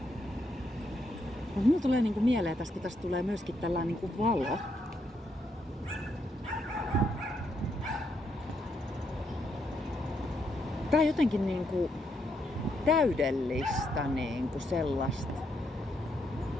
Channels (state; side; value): normal; both; correlation 0.77